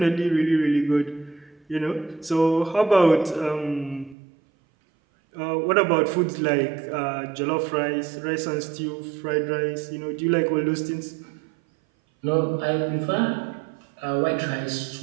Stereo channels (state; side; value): drops out; left; at 4.2 s